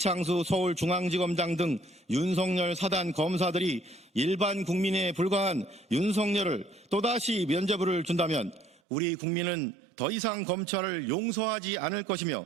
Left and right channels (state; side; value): drops out; left; at 8.8 s